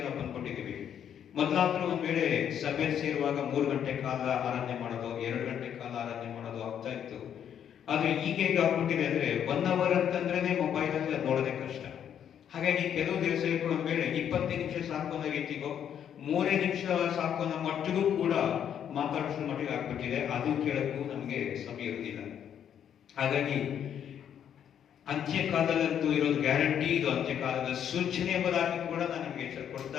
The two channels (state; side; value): quieter; right; 9.1 dB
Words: ನಾವು ಬಂದ್ಕೊಂಡಿದ್ದೀವಿ. ಮೊದಲಾದ್ರೂ ಒಂದ್ ವೇಳೆ ಸಭೆಯಲ್ಲಿ ಸೇರುವಾಗ 3 ಗಂಟೆ ಕಾಲ ಆರಾಧನೆ ಮಾಡೋದು, 2 ಗಂಟೆ ಕಾಲ ಆರಾಧನೆ ಮಾಡೋದು ಆಗ್ತಾ ಇತ್ತು. ಆದ್ರೆ ಈಗ ಹೇಗೆ ಆಗ್ಬಿಟ್ಟಿದೆ ಅಂದ್ರೆ 1 ಅವರ್ ಅಂತಂದ್ರೆ ಮೊಬೈಲ್ ಅಲ್ಲಿ ನೋಡೋದೇ ಕಷ್ಟ. ಹಾಗಾಗಿ ಕೆಲವು ದಿವಸ ಒಂದ್ ವೇಳೆ 25 ನಿಮಿಷ ಸಾಕು ಅನ್ನೋ ರೀತಿಗೋ 3 ನಿಮಿಷ ಸಾಕು ಅನ್ನೋ ಮಟ್ಟಿಗೂ ಕೂಡ ಮಾತಾಡಿಸೋ ಮಟ್ಟಿಗೆ ಆಗ್ಬಿಟ್ಟಿದೆ. ಅದು ಕೇಳಕ್ಕೂ ನಮ್ಗೆ ಸಮಯ ಇರುವುದಿಲ್ಲ. ಹಾಗಾಗಿ ಅಂತ್ಯಕಾಲದಂತೂ ಇರೋದು ಗ್ಯಾರಂಟಿ, ಇದು ಅಂತ್ಯಕಾಲದ ಸೂಚನೆ ಎಂಬುದಾಗಿ ಕೂಡ ನಾನು ನಿಮ್ಗೆ ಎಚ್ಚರ ಕೊಡ್ತಾ